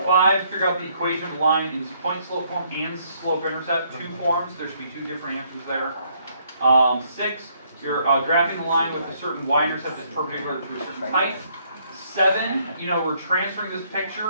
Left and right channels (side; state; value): both; inverted; correlation -0.68